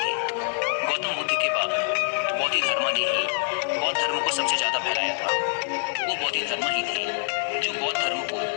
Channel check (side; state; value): right; silent; digital silence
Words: गौतम बुद्ध के बाद बोधिधर्मा ने ही बौद्ध धर्म को सबसे ज्यादा फैलाया था। वो बोधिधर्मा ही थे जो बौद्ध धर्म को